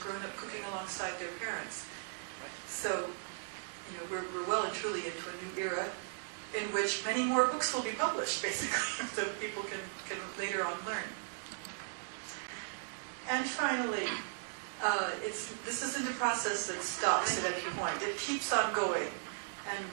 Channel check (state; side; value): silent; left; digital silence